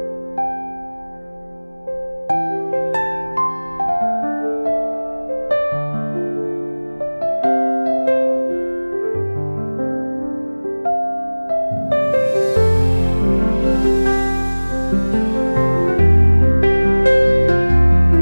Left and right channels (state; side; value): inverted; both; correlation -1.00